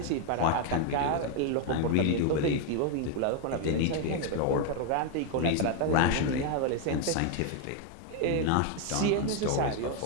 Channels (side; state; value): both; different; correlation 0.00